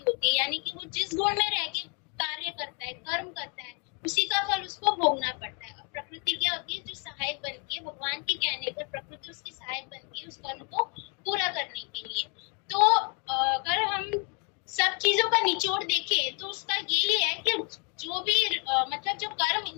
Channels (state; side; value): quieter; right; 35.1 dB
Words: होती है, यानी कि वो जिस गुण में रह के कार्य करता है, कर्म करता है, उसी का फल उसको भोगना पड़ता है। और प्रकृति क्या होती है? जो सहायक बनती है, भगवान के कहने पर प्रकृति उसकी सहायक बनती है उस कर्म को पूरा करने के लिए। तो अगर हम सब चीजों का निचोड़ देखें तो उसका यही है कि जो भी मतलब जो